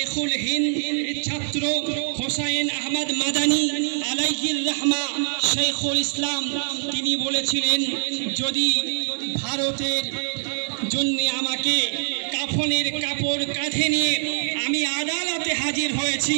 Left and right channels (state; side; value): silent; left; digital silence